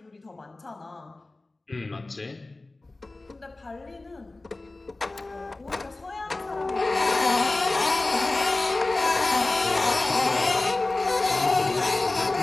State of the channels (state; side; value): quieter; right; 3.1 dB